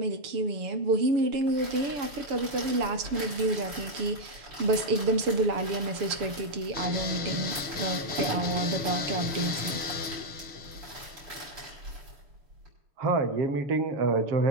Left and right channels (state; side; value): late; left; 7.0 ms